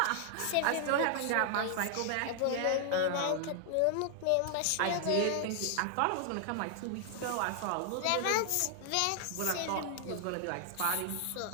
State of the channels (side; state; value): both; different; correlation 0.00